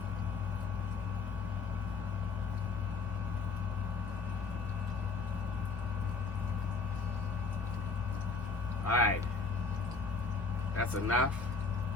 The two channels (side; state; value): right; quieter; 4.3 dB